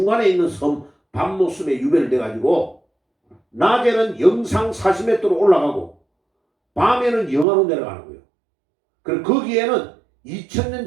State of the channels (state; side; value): drops out; left; at 7.5 s